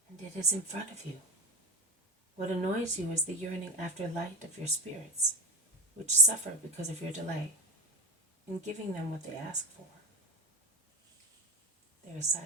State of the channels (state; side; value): normal; both; correlation 0.20